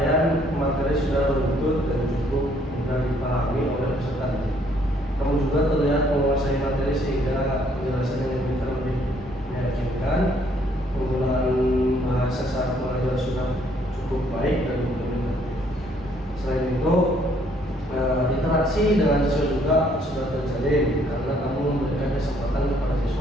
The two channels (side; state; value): both; normal; correlation 0.65